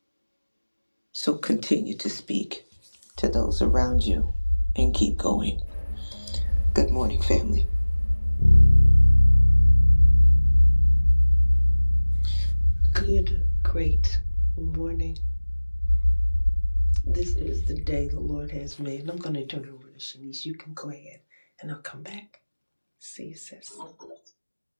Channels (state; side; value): inverted; both; correlation -1.00